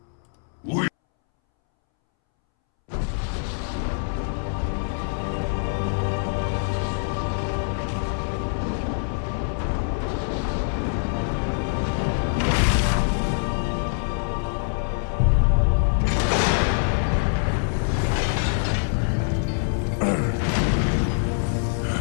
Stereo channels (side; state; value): right; silent; 62 dB below the other